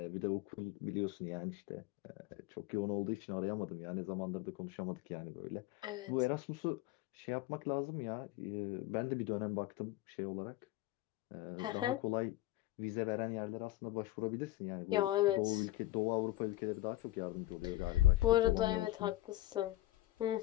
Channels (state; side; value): quieter; right; 16.3 dB